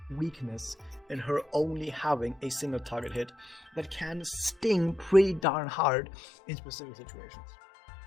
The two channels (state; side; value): drops out; right; at 5.5 s